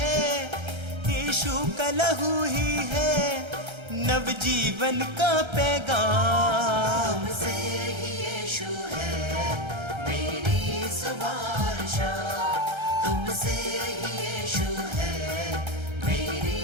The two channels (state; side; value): late; left; 1.3 ms